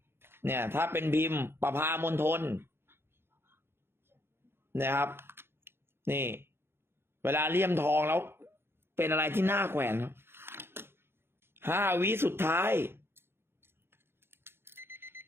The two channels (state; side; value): late; left; 0.11 ms